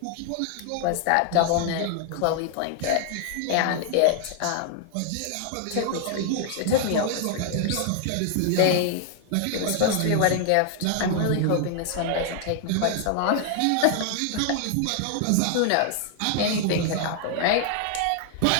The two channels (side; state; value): both; different; correlation 0.00